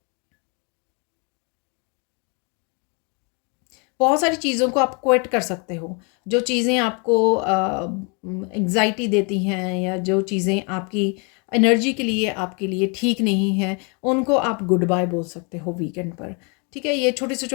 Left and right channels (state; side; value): quieter; right; 34.1 dB